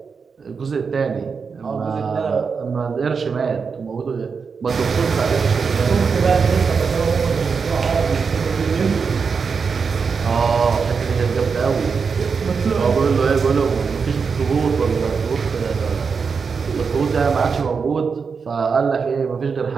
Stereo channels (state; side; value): quieter; left; 5.5 dB